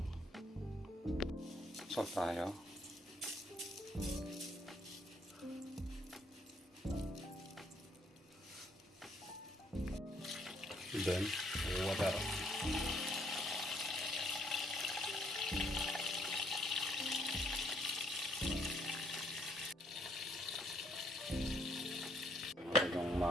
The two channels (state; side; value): normal; both; correlation 0.68